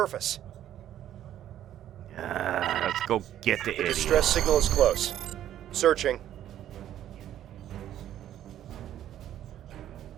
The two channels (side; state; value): left; quieter; 11.6 dB